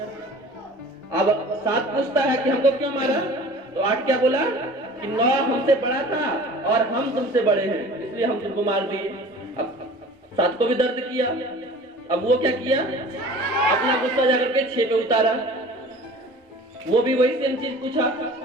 अब 7 पूछता है कि हमको क्यों मारा, तो 8 क्या बोला कि 9 हमसे बड़ा था और हम तुमसे बड़े हैं, इसलिए हम तुमको मार दिए। अब 7 को भी दर्द किया। अब वो क्या किया, अपना गुस्सा जाकर के 6 पे उतारा। वो भी वही सेम चीज पूछा,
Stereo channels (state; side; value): normal; both; correlation 0.43